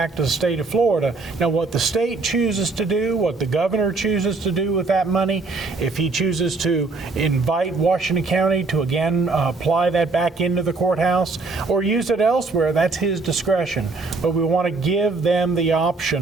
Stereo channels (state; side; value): quieter; left; 3.7 dB